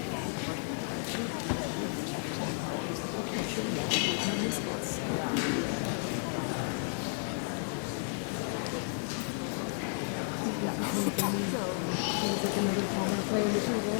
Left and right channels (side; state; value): right; silent; 56 dB below the other